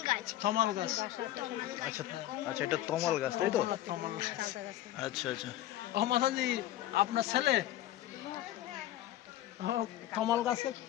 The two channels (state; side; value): quieter; right; 14.1 dB